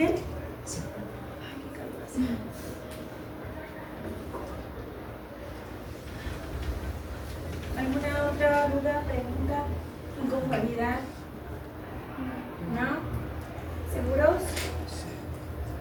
¿Alguna otra duda, pregunta, inconformidad? ¿No? ¿Seguros?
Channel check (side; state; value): both; identical; correlation 1.00